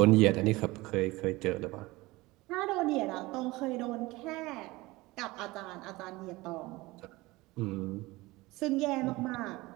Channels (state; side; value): quieter; left; 21.0 dB